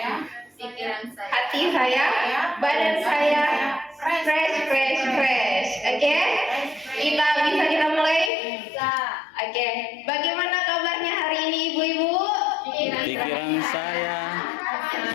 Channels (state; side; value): drops out; right; at 8.3 s